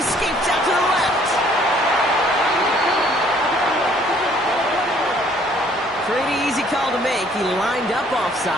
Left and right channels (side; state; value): both; normal; correlation 0.60